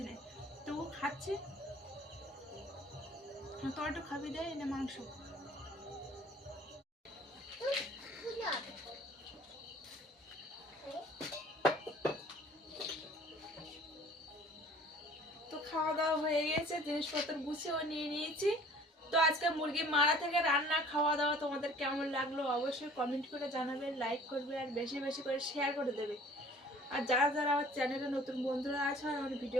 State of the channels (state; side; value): normal; both; correlation 0.50